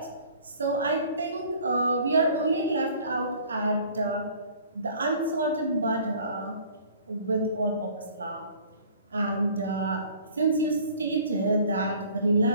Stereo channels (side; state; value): both; inverted; correlation -0.51